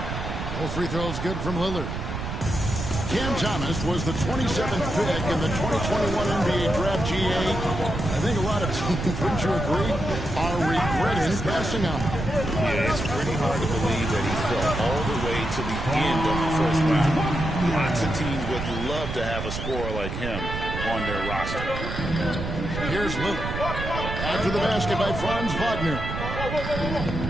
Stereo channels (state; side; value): noise; right; rumble, 5 dB below the sound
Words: Both free throws good from Lillard. Cam Thomas was the 27th pick in the 2021 NBA Draft GA. I think a lot of teams, wouldn't you agree, are regretting passing on him. Yeah, it's pretty hard to believe that he fell all the way to the end of the first round. Lots of teams would love to have a scorer like him on their roster. Here's Lillard. After the basket by Franz Wagner.